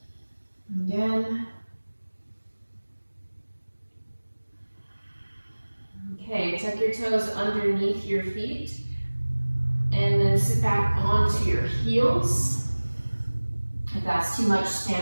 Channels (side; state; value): both; inverted; correlation -1.00